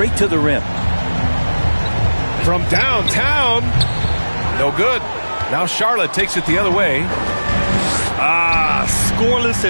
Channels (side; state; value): both; inverted; correlation -1.00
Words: to the rim. From downtown. No good. Now Charlotte takes it the other way. Scoreless